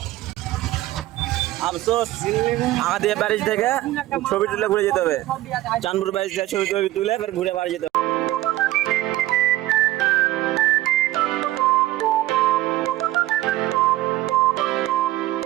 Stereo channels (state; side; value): quieter; left; 16.2 dB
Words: আফসোস আমাদের ব্যারেজ থেকে ছবি তুলে ঘুরে যেতে হবে, চাঁদপুর ব্যারেজ থেকে ছবি টবি তুলে এবার ঘুরে বাড়ি যেতে হবে।